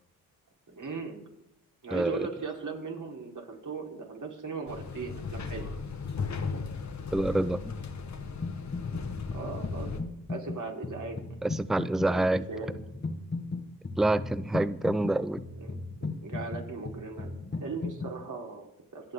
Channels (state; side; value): normal; both; correlation 0.77